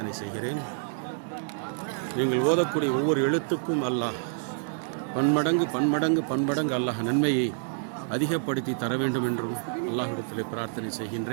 செய்கிறேன். நீங்கள் ஓதக்கூடிய ஒவ்வொரு எழுத்துக்கும் அல்லாஹ் பன்மடங்கு அல்லாஹ் நன்மையை அதிகப்படுத்தி தர வேண்டும் என்றும் அல்லாஹ்விடத்தில் பிரார்த்தனை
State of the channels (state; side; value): silent; left; digital silence